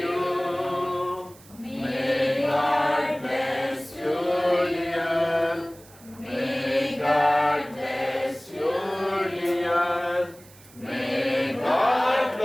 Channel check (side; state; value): right; noise; hiss, 24 dB below the sound